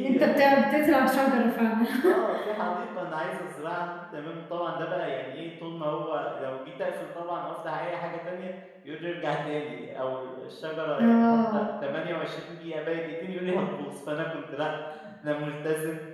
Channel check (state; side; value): identical; both; correlation 1.00